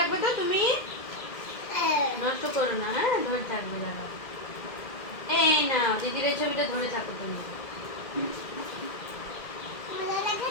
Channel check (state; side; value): late; right; 2.0 ms